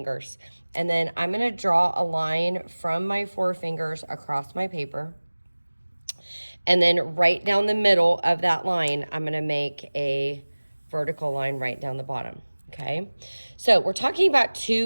And then I'm going to draw a line from my 4 fingers across my paper. And then right down the middle of that line, I'm going to make a vertical line right down the bottom. Okay, so we're talking about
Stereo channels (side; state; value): both; inverted; correlation -1.00